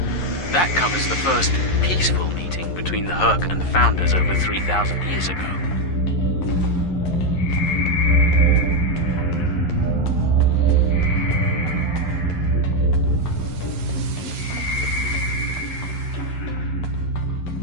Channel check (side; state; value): right; late; 11 ms